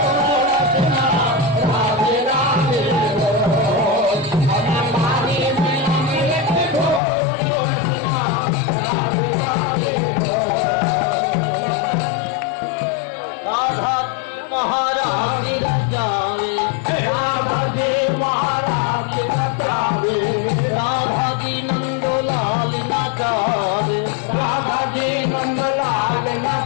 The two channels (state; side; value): drops out; right; at 7.0 s